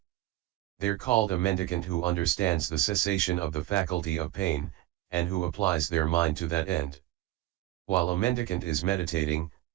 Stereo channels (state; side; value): quieter; left; 16.3 dB